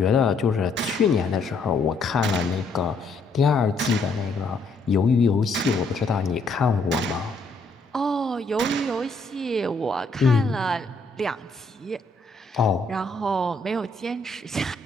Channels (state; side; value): quieter; right; 3.2 dB